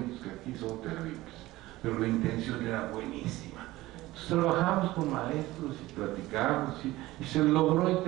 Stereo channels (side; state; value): left; quieter; 17.9 dB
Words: que aquí son terribles, pero la intención era buenísima. Entonces trabajamos con maestros y platicamos y se logró